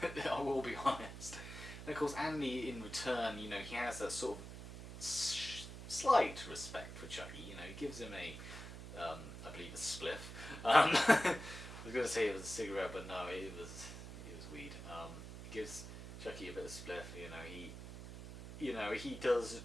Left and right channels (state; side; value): noise; right; hum, 11 dB below the sound